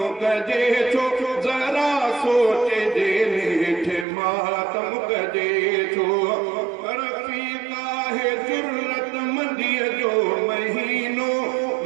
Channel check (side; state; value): left; drops out; at 4.0 s